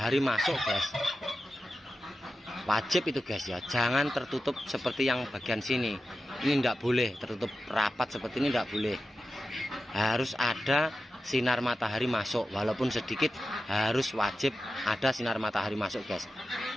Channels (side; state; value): both; normal; correlation 0.92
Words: masuk guys, wajib itu guys ya. Jangan tertutup seperti yang bagian sini. Ini tidak boleh tertutup rapat seperti ini, tidak boleh. Harus ada sinar matahari masuk, walaupun sedikit harus wajib ada sinar matahari masuk guys.